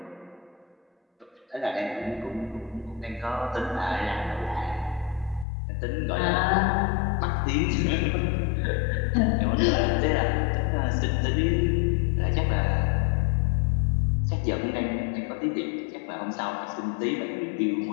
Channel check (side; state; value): right; drops out; at 5.5 s